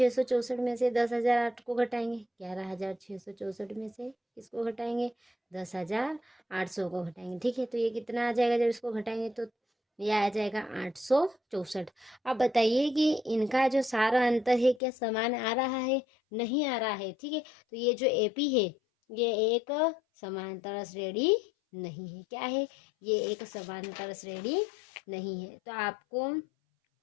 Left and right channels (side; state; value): right; drops out; at 14.8 s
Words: में से 10,008 को घटाएंगे, 11,664 में से किसको घटाएंगे, 10,800 को घटाएंगे, ठीक है। तो ये कितना आ जाएगा, जब इसको घटाएंगे तो ये आ जाएगा 864। अब बताइए कि इनका जो सारा अंतर है क्या समान आ रहा है, नहीं आ रहा है, ठीक है। तो ये जो एपी है ये एक समांतर श्रेणी नहीं है, क्या है, ये एक समांतर श्रेणी नहीं है। तो आपको,